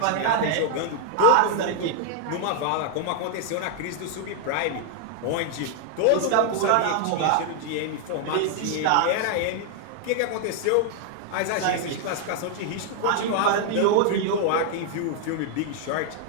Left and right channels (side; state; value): both; different; correlation 0.00